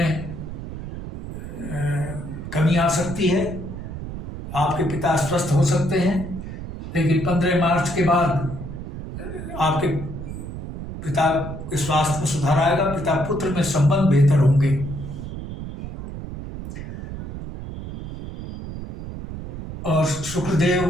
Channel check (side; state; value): right; noise; rumble, 9 dB below the sound